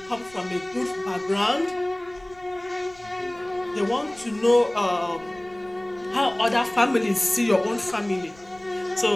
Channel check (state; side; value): noise; left; rumble, 26 dB below the sound